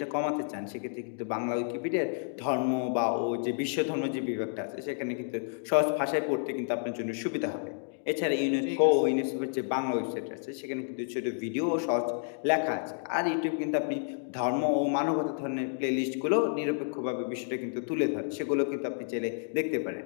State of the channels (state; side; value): silent; right; digital silence